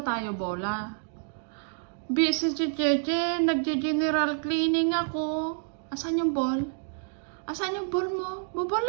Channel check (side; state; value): left; silent; digital silence